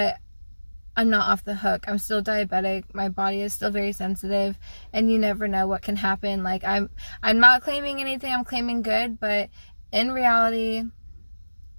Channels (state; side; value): inverted; both; correlation -1.00